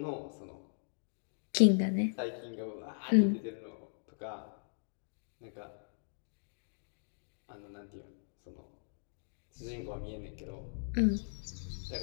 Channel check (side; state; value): right; silent; digital silence